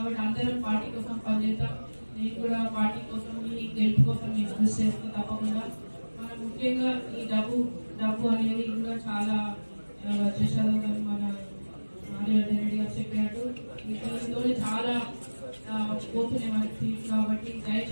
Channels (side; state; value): both; inverted; correlation -1.00